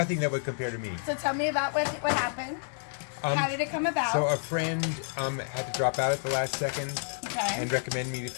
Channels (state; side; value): silent; right; digital silence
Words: that would compare to me. So tell me about what happened. How did it come about? So a friend had to drop out at the last second Okay. and recommended me to